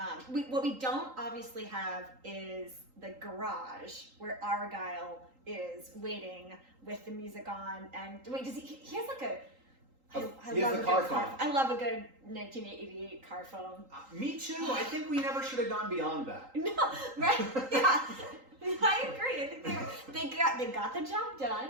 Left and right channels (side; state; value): left; late; 3.8 ms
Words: what we don't obviously have is the garage where Argyle is waiting with the music on, and wait, does he has like a. He has the car phone. I love a good 1988 car phone. Me too. I think we never should have gone beyond that. No, right? Yeah, I agree. I think they got the job done.